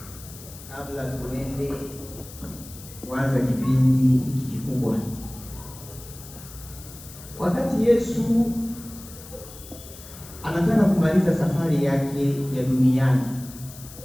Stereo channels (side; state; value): left; noise; hiss, 17 dB below the sound